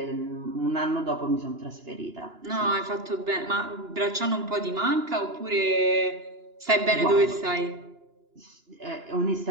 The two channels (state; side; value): late; left; 2.9 ms